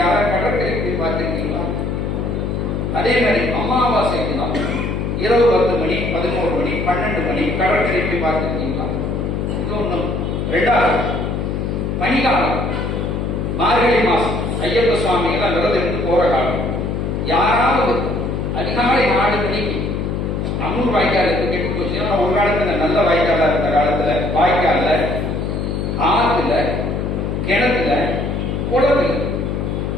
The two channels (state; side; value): noise; left; hum, 1 dB below the sound